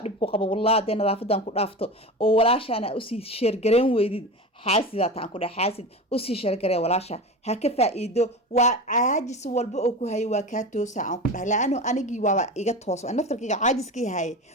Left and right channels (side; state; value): both; normal; correlation 0.28